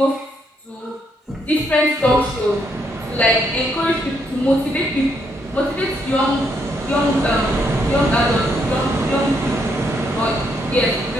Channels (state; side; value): normal; both; correlation 0.75